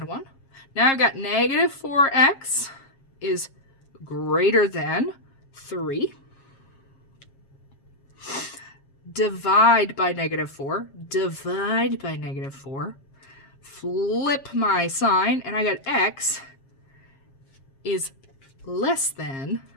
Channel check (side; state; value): right; late; 7.4 ms